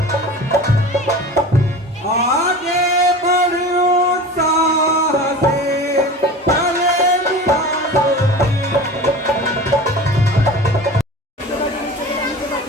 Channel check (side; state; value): both; normal; correlation 0.35